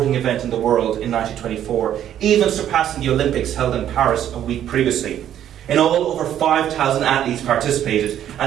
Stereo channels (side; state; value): left; quieter; 10.8 dB